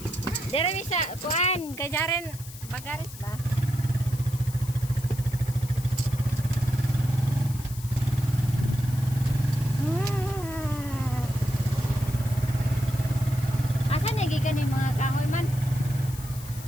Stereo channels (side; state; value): left; noise; hiss, 16 dB below the sound